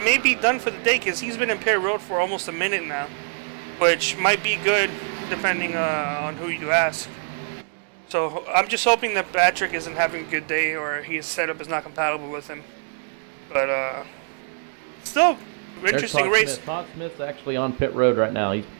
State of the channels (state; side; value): silent; left; digital silence